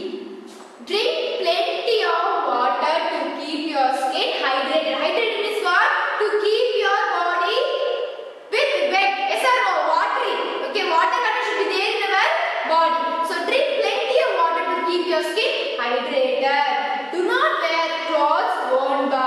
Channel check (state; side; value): identical; both; correlation 1.00